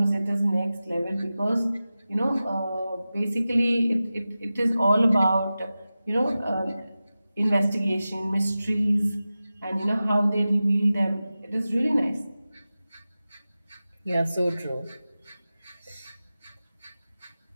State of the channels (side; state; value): both; inverted; correlation -0.95